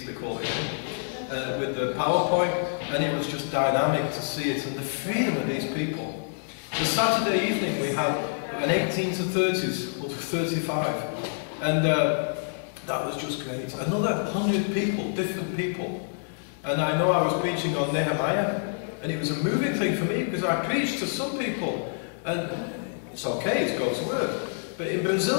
they call it, with the PowerPoint, and it was just dynamic to see it, and the freedom of these people. The Saturday evening we had an 18 to 30s, or 35, and that was just great. Another 100 people, different people. And I know I was preaching on Nehemiah, and it was a moving thing for me, because I preached to some people, and it's okay, it's God's word. But in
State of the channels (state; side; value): silent; right; digital silence